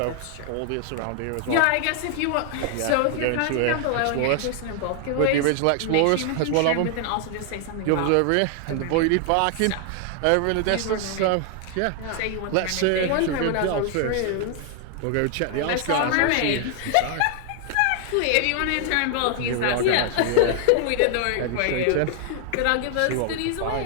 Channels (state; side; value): different; both; correlation 0.00